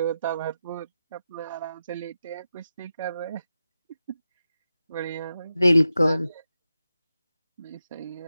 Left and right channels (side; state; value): both; inverted; correlation -0.90